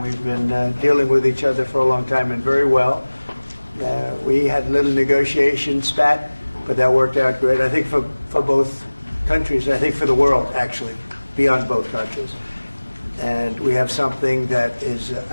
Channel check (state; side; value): inverted; both; correlation -1.00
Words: been dealing with each other for a long time and very well. We had a little negotiation spat, but that worked out great. I think for both countries, I think for the world, actually, beyond both countries. And we have something that is